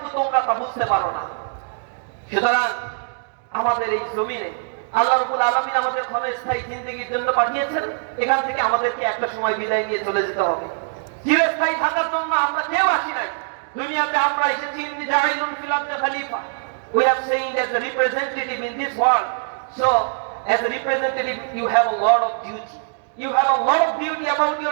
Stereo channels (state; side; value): silent; left; digital silence